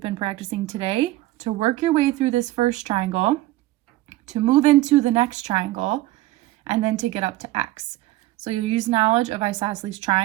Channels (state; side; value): quieter; left; 17.3 dB